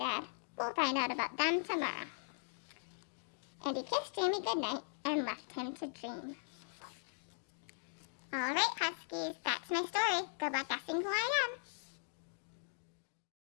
We'll find out about them tomorrow. And he kissed Jamie goodnight and left him to dream. All right, Huskies, that's my story. Good luck guessing who I am.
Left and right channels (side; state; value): right; silent; digital silence